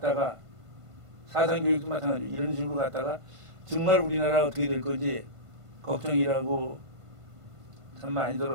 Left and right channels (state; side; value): late; left; 1.5 ms